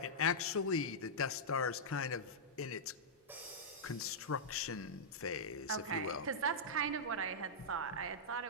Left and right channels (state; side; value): normal; both; correlation -0.10